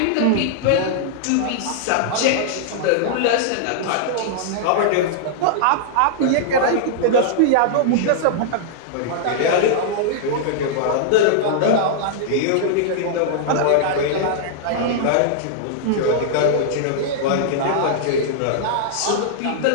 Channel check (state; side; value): different; both; correlation -0.01